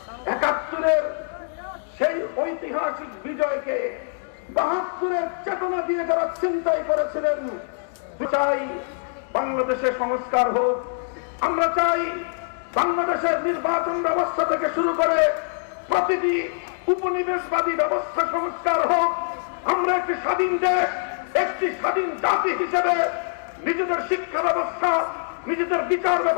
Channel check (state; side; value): silent; right; digital silence